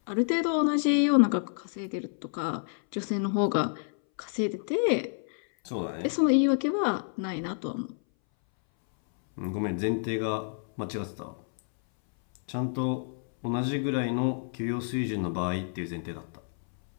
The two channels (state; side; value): silent; right; 59 dB below the other